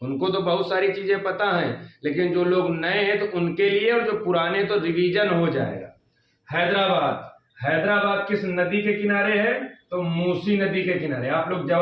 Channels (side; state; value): both; identical; correlation 1.00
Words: उनको तो बहुत सारी चीजें पता हैं, लेकिन जो लोग नए हैं तो उनके लिए, और जो पुराने तो रिवीजन हो जाएगा। हैदराबाद किस नदी के किनारे है? तो मूसी नदी के किनारे। आप लोग